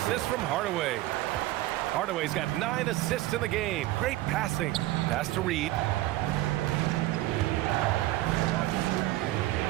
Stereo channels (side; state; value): left; quieter; 16.9 dB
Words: from Hardaway. Hardaway's got 9 assists in the game. Great passing. Pass to Reid.